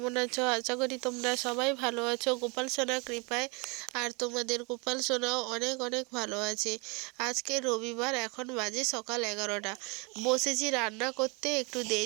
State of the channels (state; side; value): quieter; left; 30.1 dB